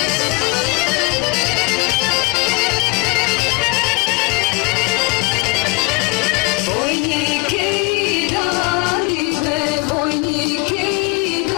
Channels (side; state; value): right; quieter; 27.7 dB